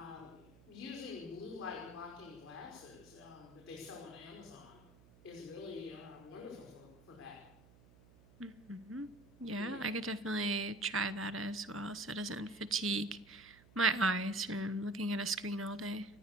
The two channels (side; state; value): right; noise; hum, 24 dB below the sound